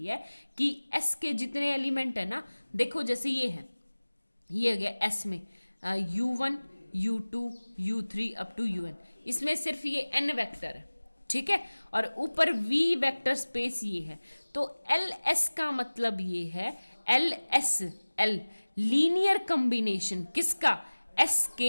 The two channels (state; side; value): inverted; both; correlation -1.00